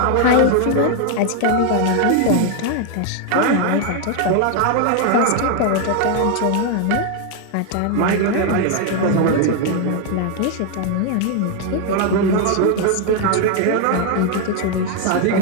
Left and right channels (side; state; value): both; different; correlation 0.01